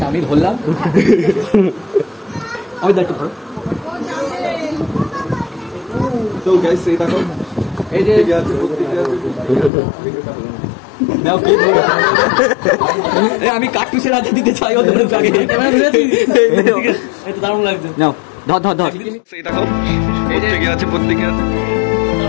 আমি ধরলাম, আমি দায়িত্ব করো। তো গাইস এই দেখো, এই যে আমি কার্টুসের হাতে দিতে চাই ওদের আগে। এটা দারুণ লাগছে। নাও ধর ধর ধর। সেই দেখো, প্রত্যেকে আছে, প্রত্যেকে আছে,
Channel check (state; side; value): drops out; right; at 9.7 s